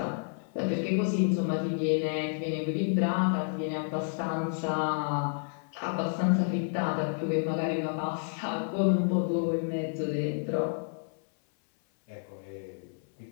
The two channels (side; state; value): right; silent; 58 dB below the other